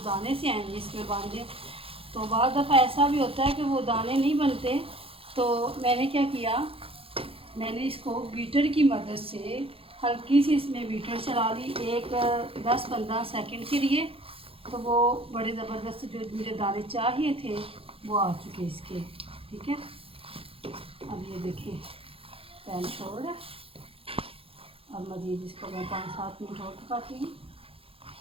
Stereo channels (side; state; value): left; late; 0.27 ms